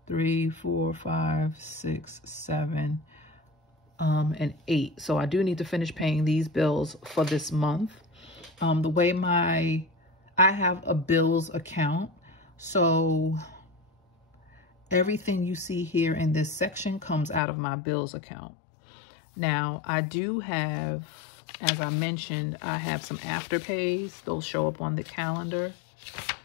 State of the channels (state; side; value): drops out; right; at 17.4 s